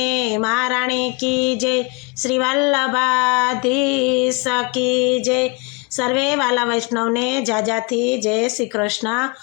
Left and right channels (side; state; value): right; quieter; 30.5 dB